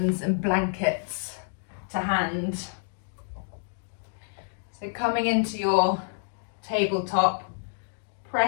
and blankets to hand. So coming into your tabletop,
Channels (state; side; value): silent; right; digital silence